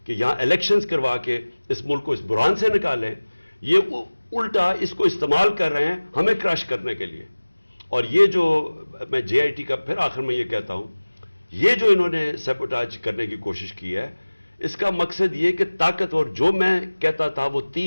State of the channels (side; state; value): both; inverted; correlation -1.00